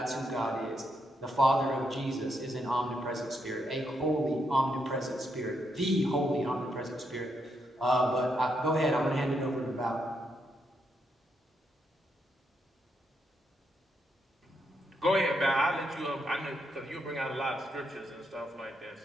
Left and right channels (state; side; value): normal; both; correlation 0.79